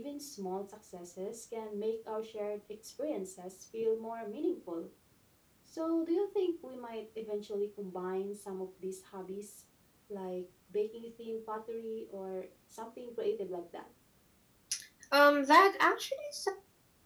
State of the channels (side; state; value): both; identical; correlation 1.00